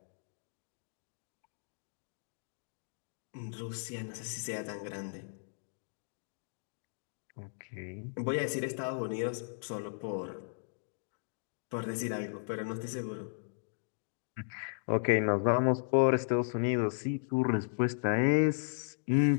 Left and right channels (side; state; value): right; silent; digital silence